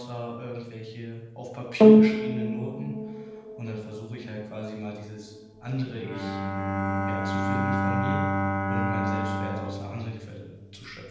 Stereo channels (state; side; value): identical; both; correlation 1.00